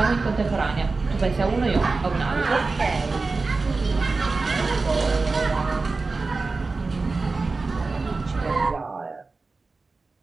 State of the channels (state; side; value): quieter; left; 3.9 dB